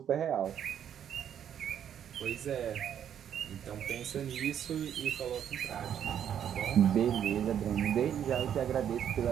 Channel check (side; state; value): left; quieter; 9.3 dB